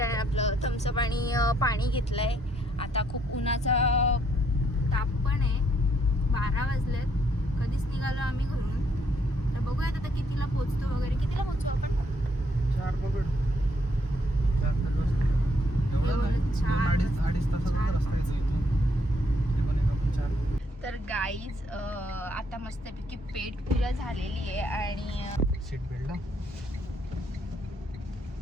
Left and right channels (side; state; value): both; normal; correlation 0.71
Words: आहे, आपलं थम्सअप आणि पाणी घेतलं आहे. आता खूप उन्हाचा ताप पण आहे. 12 वाजलेत. कधीच निघालो आम्ही घरून. तर बघूयात आता कितीला पोचतो वगैरे. कितीला पोचू आपण? 4 पकड. 4 अडीच तासाचा रस्ता आहे इथून. ते पण एक आपण 4. तर गाईज आता मस्तपैकी पेट पूजा झालेली आहे आणि सीट बेल्ट.